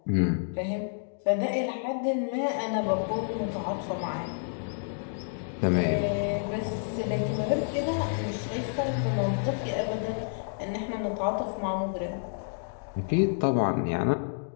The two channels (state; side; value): silent; right; digital silence